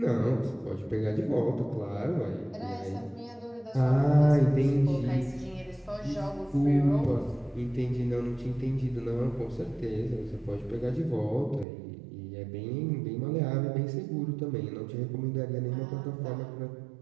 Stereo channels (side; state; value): left; drops out; at 11.7 s